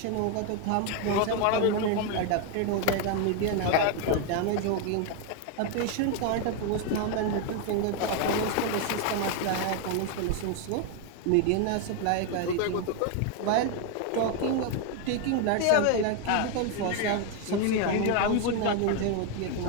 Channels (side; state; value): both; different; correlation 0.01